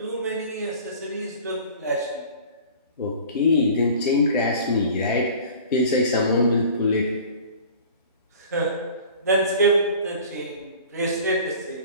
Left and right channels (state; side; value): inverted; both; correlation -0.44